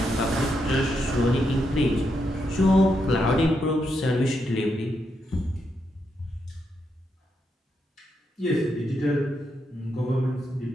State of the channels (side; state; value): both; normal; correlation 0.82